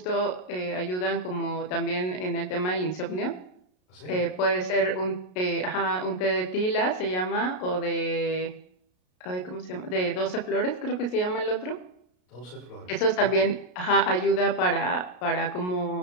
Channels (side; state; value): right; late; 33 ms